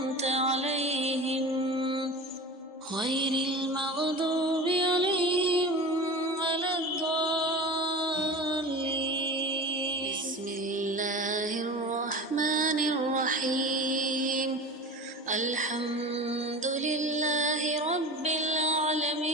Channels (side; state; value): both; normal; correlation 0.32